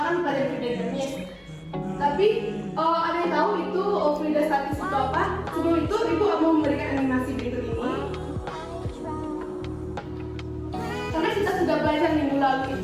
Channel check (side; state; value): both; identical; correlation 1.00